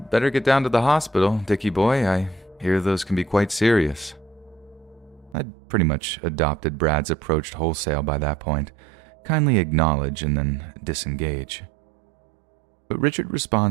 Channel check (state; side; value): drops out; left; at 5.4 s